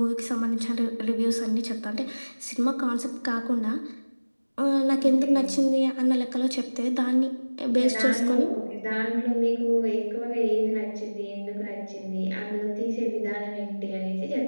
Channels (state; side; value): inverted; both; correlation -1.00